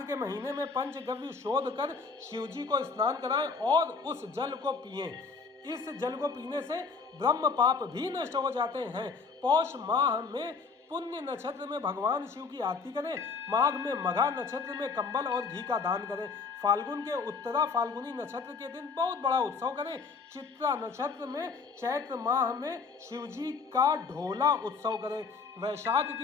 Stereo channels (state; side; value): quieter; right; 4.9 dB